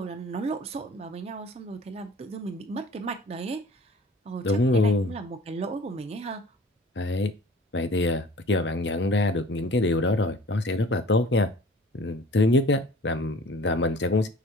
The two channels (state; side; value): normal; both; correlation 0.46